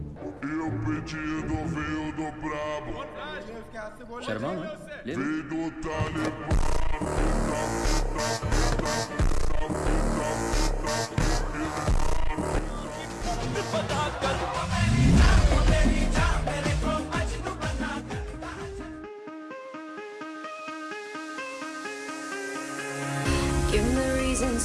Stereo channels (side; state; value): both; identical; correlation 1.00